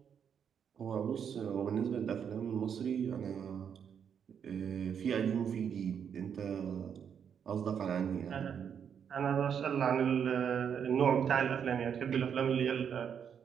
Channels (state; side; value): quieter; left; 7.8 dB